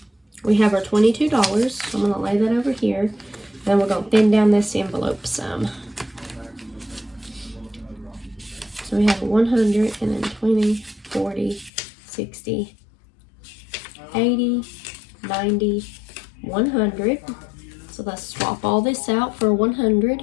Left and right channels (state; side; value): drops out; right; at 11.7 s